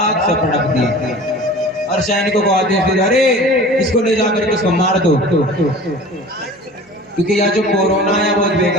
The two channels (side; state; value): both; normal; correlation 0.41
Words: से पटक दिया और सैनिकों को आदेश दिया, अरे इसको ले जाकर के इसको मार दो, क्योंकि यह जो कोरोना है बहुत